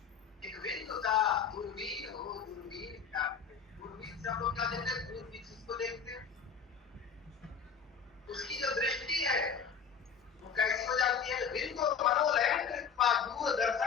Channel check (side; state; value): right; quieter; 6.6 dB